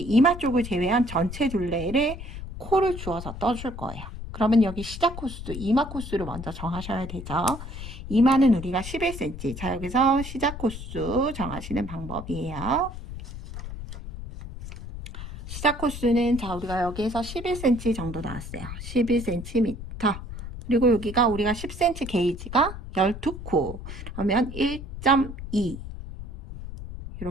이마 쪽을 제외한 전체 둘레를 코를 주어서 떠줄 거예요. 그러면 여기 시작 코수, 이마 코수를 먼저 정하셔야 되죠. 이마는 우리가 11cm. 자, 여기서 시작 코수 정하시는 방법이에요. 시작 코수는 자, 우리가 여기에서 11cm 정도 나왔어요. 11cm. 그리고 여기가 우리가 10cm 게이지가 12코. 그러면 1.2.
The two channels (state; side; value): noise; left; rumble, 10 dB below the sound